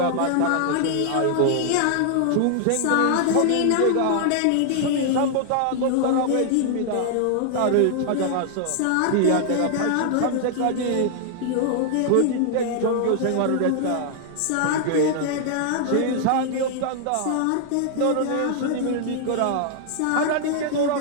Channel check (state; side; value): different; both; correlation 0.00